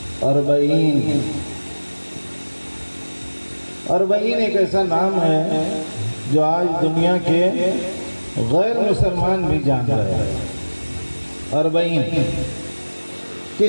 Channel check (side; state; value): both; inverted; correlation -1.00